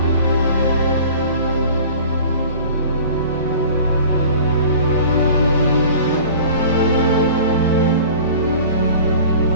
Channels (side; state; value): both; inverted; correlation -0.43